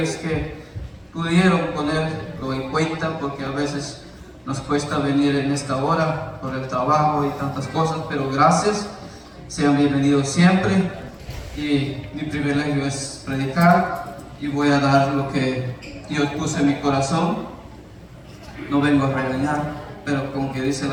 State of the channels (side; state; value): both; identical; correlation 1.00